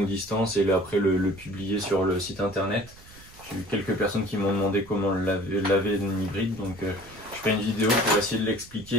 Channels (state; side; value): noise; right; rumble, 22 dB below the sound